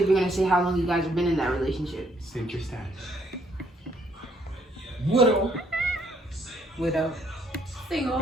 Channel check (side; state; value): both; normal; correlation 0.69